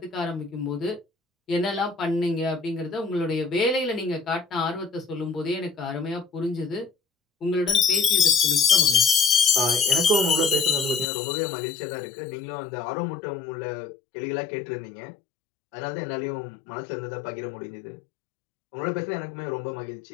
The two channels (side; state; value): right; drops out; at 11.1 s